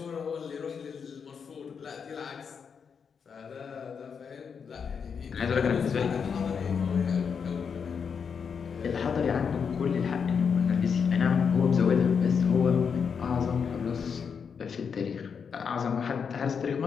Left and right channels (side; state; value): right; quieter; 6.4 dB